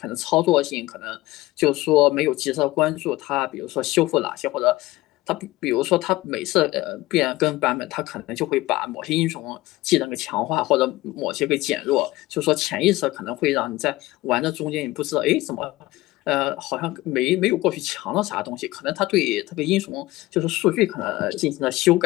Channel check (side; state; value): right; quieter; 18.5 dB